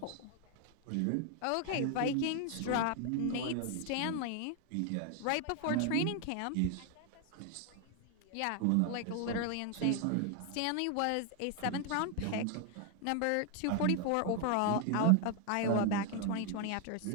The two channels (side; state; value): both; different; correlation 0.01